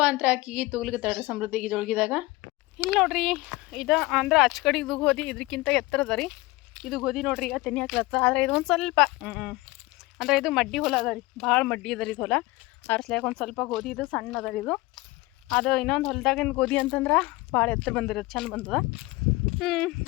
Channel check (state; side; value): quieter; right; 20.9 dB